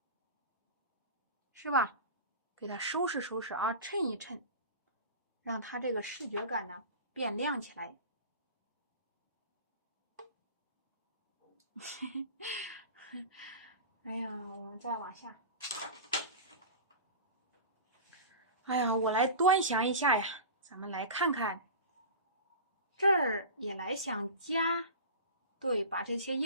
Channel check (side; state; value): both; inverted; correlation -0.32